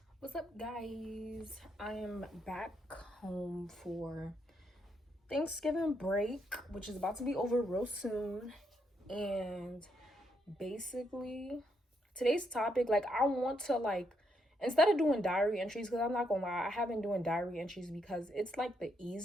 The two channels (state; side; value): normal; both; correlation 0.77